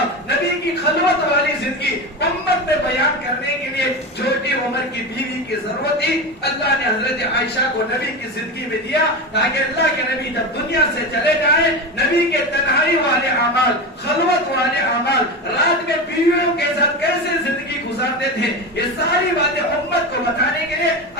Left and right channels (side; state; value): both; normal; correlation 0.22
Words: نبی کی خلوت والی زندگی امت میں بیان کرنے کے لیے چھوٹی عمر کی بیوی کی ضرورت تھی۔ اللہ نے حضرت عائشہ کو نبی کی زندگی میں دیا تاکہ اللہ کے نبی جب دنیا سے چلے جائیں، نبی کے تنہائی والے اعمال، خلوت والے اعمال، رات میں بیویوں کے ساتھ کیسے زندگی گزارتے تھے، یہ ساری باتیں امت کو بتانے کے لیے